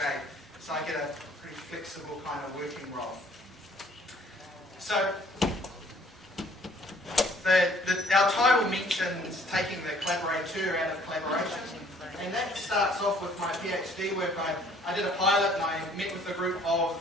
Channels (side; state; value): both; normal; correlation 0.58